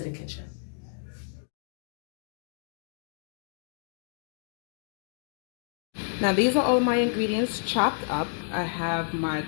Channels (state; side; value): silent; right; digital silence